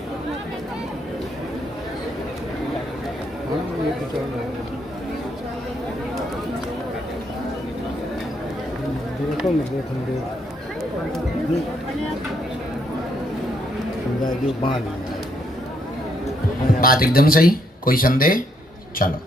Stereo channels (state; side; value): normal; both; correlation 0.73